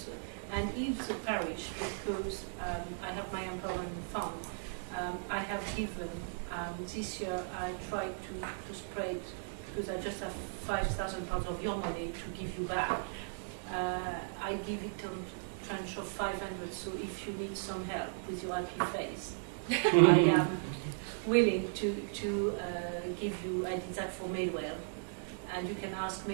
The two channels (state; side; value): silent; left; digital silence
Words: And if the parish, because I have my empowerment fund, I have given, this year I tried to spread, because I just have £5,000 of your money to give you back. I give it a tranche of 500, so if you need some help with your happy face, I am willing to give you, I did that for Midwell, and you can ask